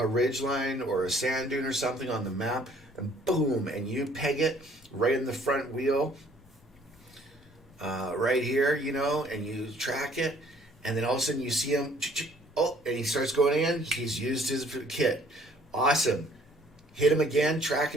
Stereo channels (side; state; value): left; noise; rumble, 29 dB below the sound